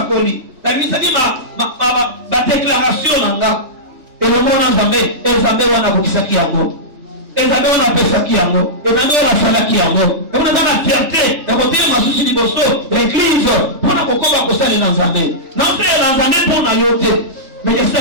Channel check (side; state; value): left; late; 3.3 ms